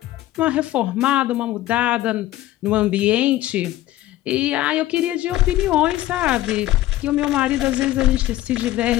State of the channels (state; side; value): quieter; right; 15.3 dB